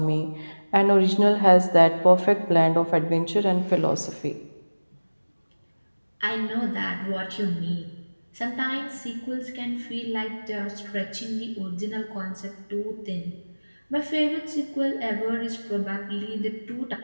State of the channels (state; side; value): inverted; both; correlation -1.00